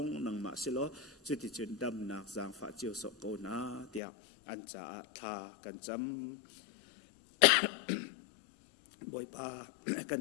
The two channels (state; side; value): drops out; right; at 4.0 s